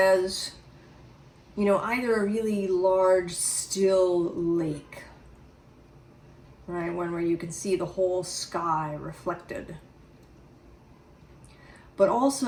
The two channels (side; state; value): both; identical; correlation 1.00